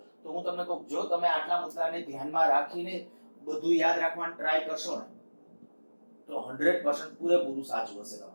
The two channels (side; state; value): both; inverted; correlation -1.00